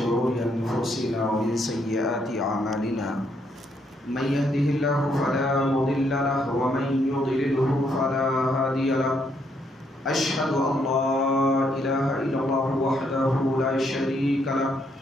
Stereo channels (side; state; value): both; normal; correlation 0.73